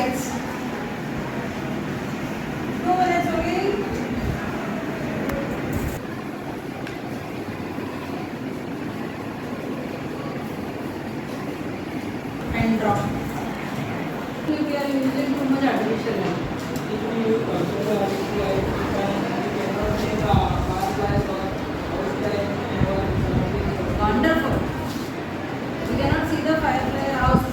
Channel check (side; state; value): both; identical; correlation 1.00